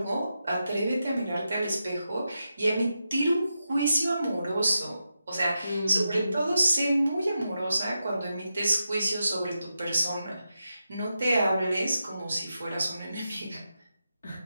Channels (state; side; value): inverted; both; correlation -0.88